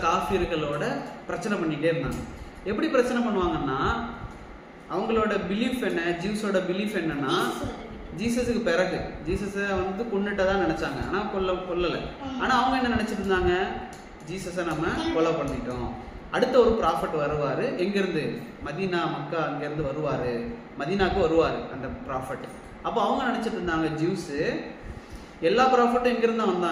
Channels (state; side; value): identical; both; correlation 1.00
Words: காஃபிர்களோட பிரச்சனை பண்ணிட்டே இருந்தாங்க. எப்படி பிரச்சனை பண்ணுவாங்கன்னா, அவங்களோட பிலீஃப் என்ன, ஜூஸோட பிலீஃப் என்னன்னா, ஜீசஸுக்கு பிறகு ஜீசஸை வந்து கொன்னுட்டதான் நினைச்சாங்க. ஆனா கொல்லலை. ஆனா அவங்க என்ன நினைச்சிட்டு இருந்தாங்க, ஜீசஸை நம்ம கொலை பண்ணிட்டோம், அடுத்த ஒரு ப்ராஃபட் வருவாரு, எங்கிருந்து, மதீனா மக்கா அங்கிருந்து வருவாரு, மதீனாக்கு வருவாரு அந்த ப்ராஃபட். அப்போ அவங்க நினைச்சிட்டு இருந்தாங்க, ஜூஸ் எல்லா ப்ராஃபட்டும் எங்கிருந்து தான்